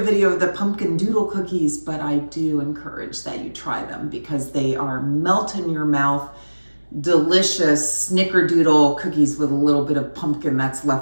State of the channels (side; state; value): both; inverted; correlation -1.00